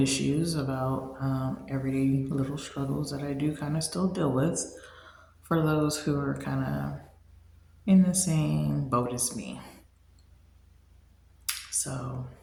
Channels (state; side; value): identical; both; correlation 1.00